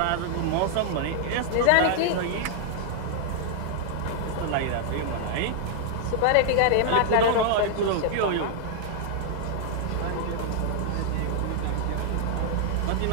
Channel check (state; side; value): different; both; correlation -0.01